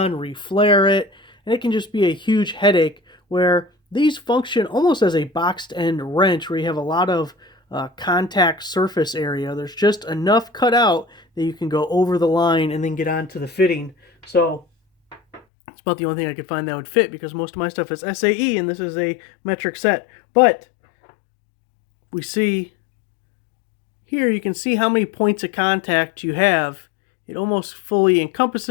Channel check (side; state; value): right; drops out; at 15.4 s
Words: reflare it, and it can just be a huge headache, where these function almost as a boxed end wrench where you have a lot of contact surface area. There's just enough cut out that you can go over the line and then get onto the fitting. So it's about the only thing I could find that would fit, because most of my stuff is SAE and this is a metric set. But we see here, you can see how many points of contact you have. It almost fully